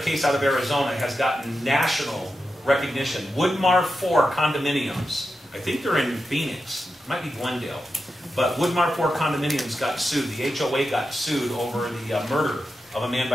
out of Arizona, has gotten national recognition. Woodmar 4 condominiums. I think they're in Phoenix. It might be Glendale. But Woodmar 4 condominiums got sued. The HOA got sued over the murder of a man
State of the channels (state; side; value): normal; both; correlation 0.89